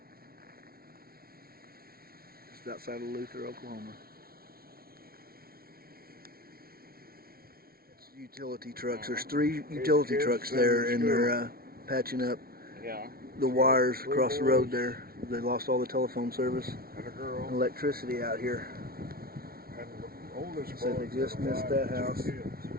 Just outside of Luther, Oklahoma. Utility trucks. There's 3 utility trucks there, and they're patching up the wires across the road there. They lost all the telephone service and electricity out here. And the oldest So they just missed that house.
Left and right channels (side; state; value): left; late; 0.44 ms